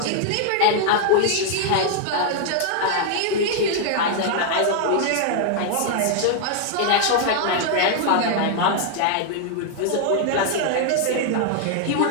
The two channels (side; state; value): both; different; correlation -0.01